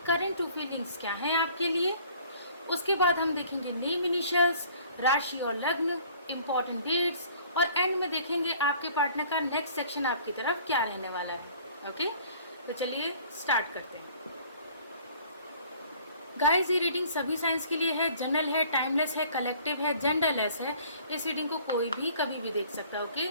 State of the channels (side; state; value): both; inverted; correlation -0.53